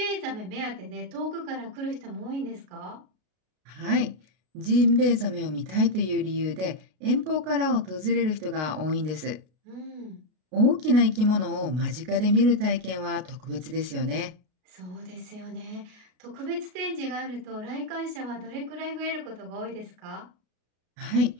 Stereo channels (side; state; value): left; late; 33 ms